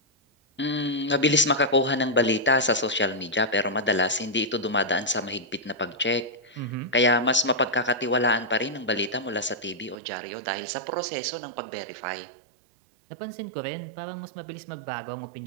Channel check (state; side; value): drops out; left; at 10.0 s